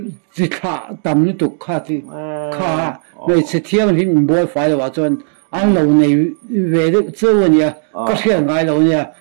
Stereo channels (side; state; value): left; silent; digital silence